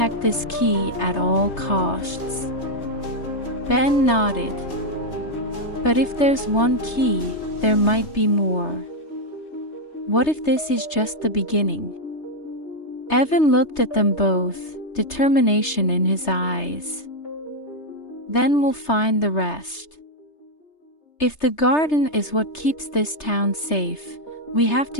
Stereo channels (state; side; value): late; right; 3.3 ms